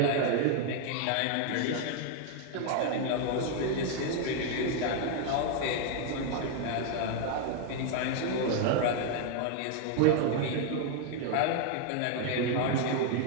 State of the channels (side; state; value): both; different; correlation 0.00